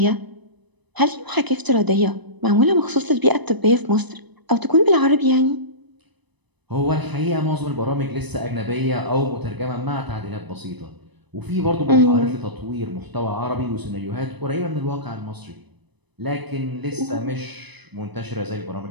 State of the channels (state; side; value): late; left; 1.0 ms